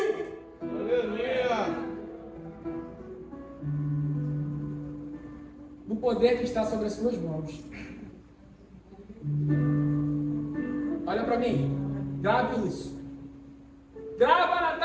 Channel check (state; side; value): identical; both; correlation 1.00